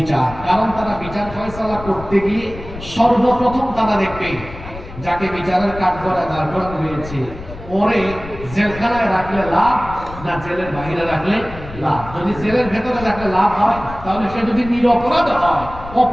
কারণ তারা বিচার ফয়সালা করতে গিয়ে সর্বপ্রথম তারা দেখবে যাকে বিচারের কাঠগড়ায় দাঁড় করানো হয়েছে, ওরে জেলখানায় রাখলে লাভ না জেলের বাইরে রাখলে লাভ? যদি জেলের ভেতরে রাখলে লাভ হয়, তাহলে সে যদি নিরপরাধ হয়,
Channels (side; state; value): left; noise; rumble, 14 dB below the sound